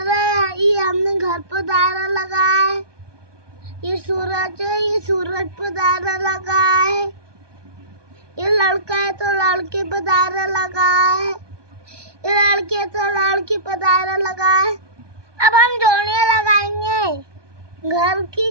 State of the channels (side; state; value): left; late; 1.2 ms